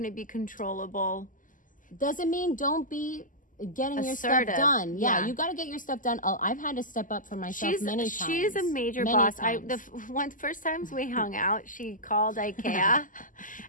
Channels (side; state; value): right; late; 0.38 ms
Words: to be controllable. Doesn't mean don't be getting your assertive. Stuff done. Yeah, you got to get your stuff done. Oh, I've had to step up for myself many times. She's a major boss. First times we hung out, she called IKEA